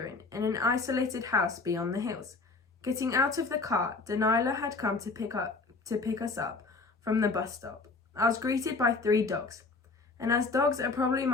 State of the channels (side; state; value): right; quieter; 4.0 dB